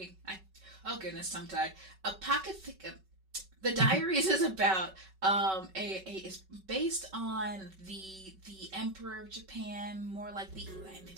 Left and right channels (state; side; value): late; left; 5.3 ms